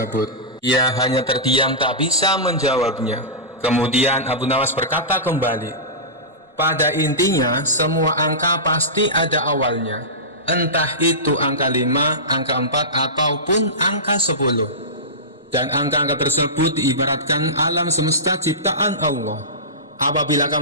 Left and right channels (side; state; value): both; normal; correlation -0.19